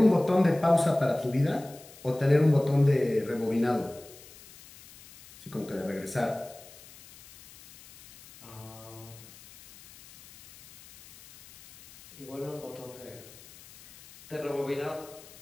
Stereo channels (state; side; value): noise; left; hiss, 21 dB below the sound